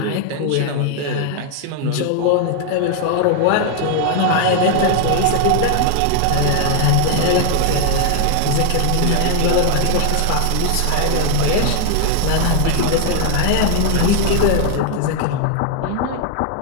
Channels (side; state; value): both; different; correlation 0.00